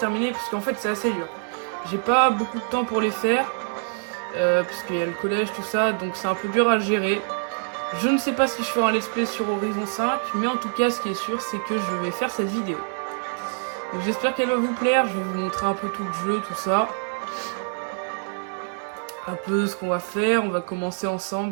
parce qu'en fait c'est assez dur. J'ai pas beaucoup de temps pour les faire parce qu'il y a le collège, tout ça, donc c'est un peu dur à gérer. Je ne sais pas si je ferai un let's play sur Horizon 5, mais en tout cas ce qui est sûr c'est que je vais faire cette vidéo. Donc j'espère qu'elle va vous plaire, je vais vous montrer un peu tout le jeu, tout ça. Un peu ce qu'on va faire, on va commencer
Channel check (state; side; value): silent; left; 61 dB below the other